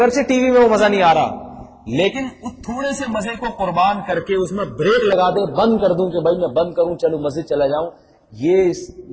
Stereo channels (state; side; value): identical; both; correlation 1.00